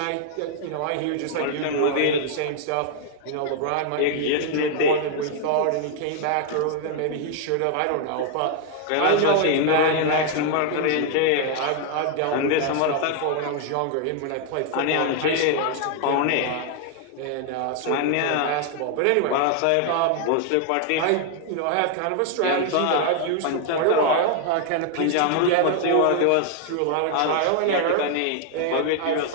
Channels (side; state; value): both; different; correlation 0.00